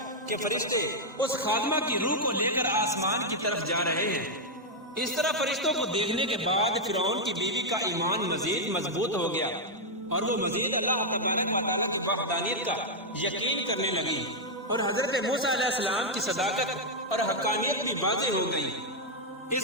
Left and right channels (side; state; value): both; normal; correlation -0.02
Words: کہ فرشتے اس خادمہ کی روح کو لے کر آسمان کی طرف جا رہے ہیں، اس طرح فرشتوں کو دیکھنے کے بعد فرعون کی بیوی کا ایمان مزید مضبوط ہو گیا اور وہ مزید اللہ تبارک و تعالیٰ کی وحدانیت کا یقین کرنے لگی، اور حضرت موسیٰ علیہ السلام کی صداقت اور حقانیت بھی واضح ہو گئی۔